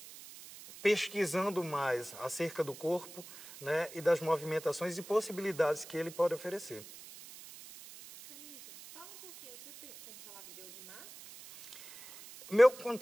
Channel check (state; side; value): noise; right; hiss, 17 dB below the sound